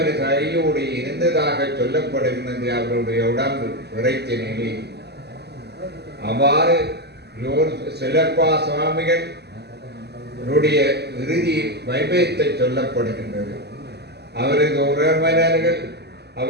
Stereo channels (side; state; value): left; late; 0.48 ms